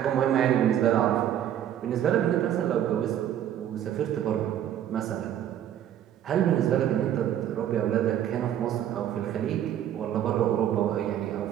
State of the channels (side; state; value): left; quieter; 10.7 dB